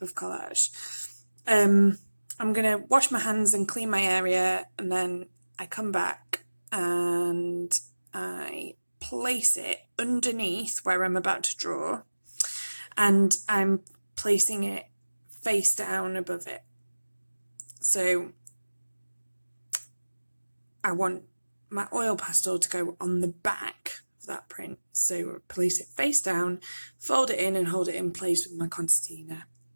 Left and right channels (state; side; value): inverted; both; correlation -1.00